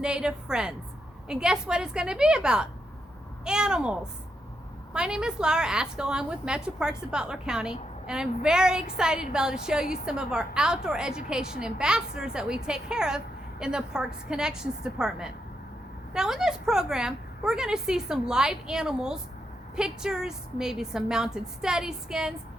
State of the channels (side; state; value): both; normal; correlation 0.82